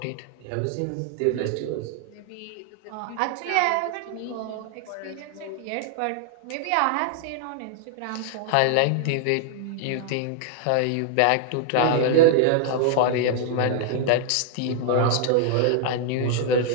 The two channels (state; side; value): different; both; correlation 0.00